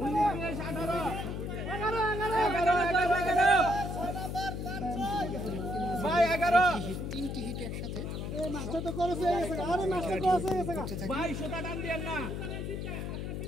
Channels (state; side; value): noise; left; hum, 4 dB below the sound